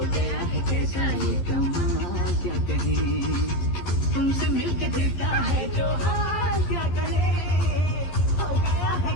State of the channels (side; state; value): right; late; 12 ms